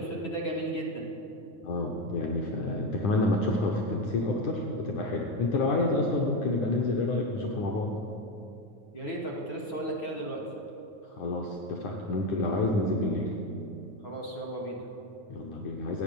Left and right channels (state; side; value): late; right; 9.1 ms